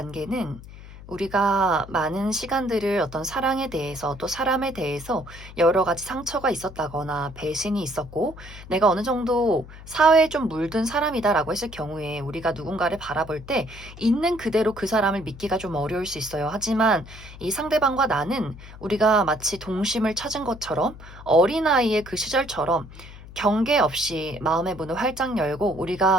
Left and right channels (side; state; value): left; noise; hum, 16 dB below the sound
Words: 우리가 많은 시간들을 어떤 사랑에 대해서 또 사람에 대해서 여러 가지 상처가 있었다거나 배신이 있었고 내가 어느 정도 사회에 좀 물든 사람이다라고 했을 경우에 우리가 누군가를 바라볼 때 있는 그대로 그 사람을 믿기가 좀 어려울 수 있어요. 하지만 이 상대방과 나는 우리가 마치 동심을 찾은 것처럼 어린아이의 그 시절처럼 경계 없이 마음의 문을 활짝 열고